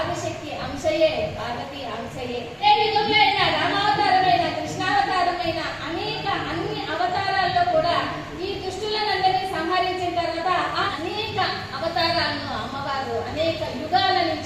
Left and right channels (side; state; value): both; identical; correlation 1.00